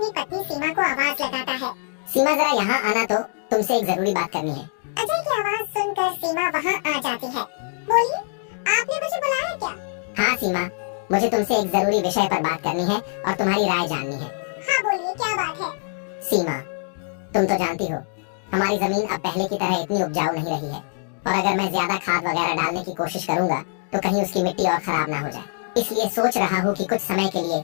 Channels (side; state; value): right; silent; digital silence